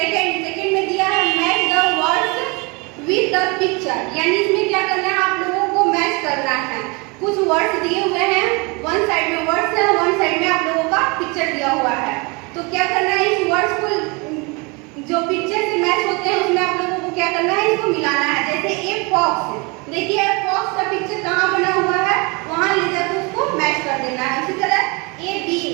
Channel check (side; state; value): left; quieter; 28.8 dB